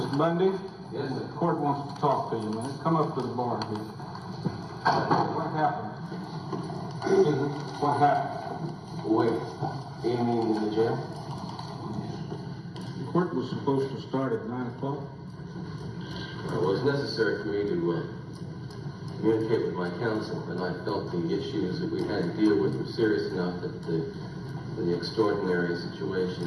Bundy? Yes, sir. The court wants to talk to you, man. Come up to the bar here. What happened? What happened? Wait, do you mean in the jail? The court was supposed to start at 9 o'clock. Well, it was necessary for me to communicate with my counsel, and I felt the issues that we had to deal with were serious enough that the extraordinary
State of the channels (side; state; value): both; identical; correlation 1.00